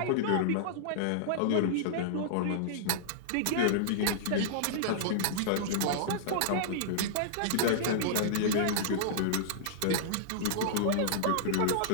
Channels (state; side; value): different; both; correlation -0.02